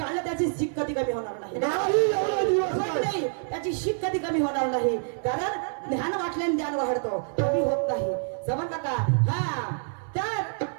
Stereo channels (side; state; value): left; silent; 58 dB below the other